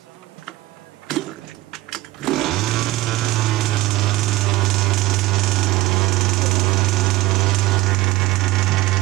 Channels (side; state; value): left; quieter; 17.6 dB